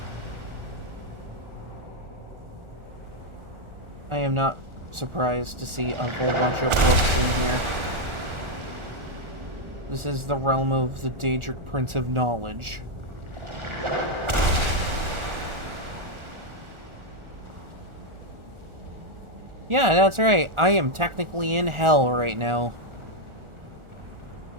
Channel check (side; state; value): left; late; 1.4 ms